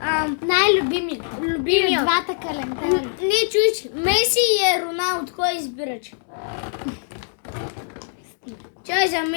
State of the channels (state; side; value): silent; right; digital silence